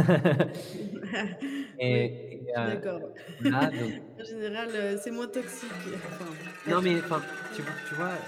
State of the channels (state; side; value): identical; both; correlation 1.00